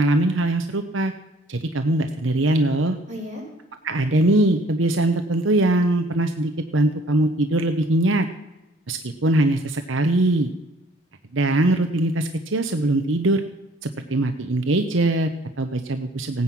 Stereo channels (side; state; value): both; normal; correlation 0.58